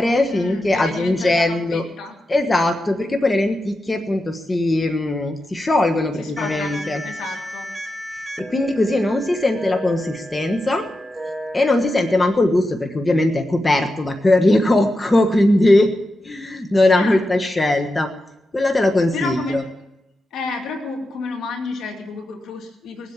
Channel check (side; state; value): both; normal; correlation 0.89